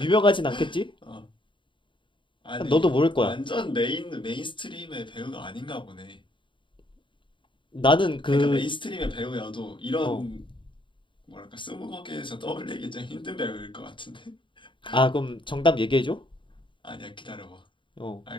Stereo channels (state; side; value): late; right; 0.24 ms